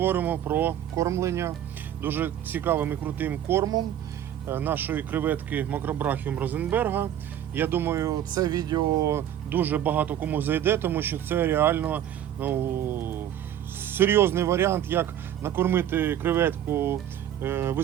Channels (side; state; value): left; quieter; 10.8 dB